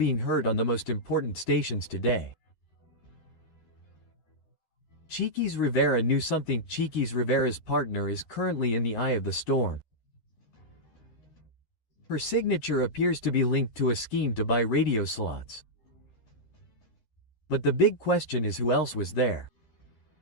heard on the most important stations today. 𝗘𝗃 Rivera knew something. 𝗘𝗃 Rivera's partner is currently in the eye of the storm. Her signature appears to be linked to a scheme to buy radio slots. But the big question is, who else was there?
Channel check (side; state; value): right; late; 11 ms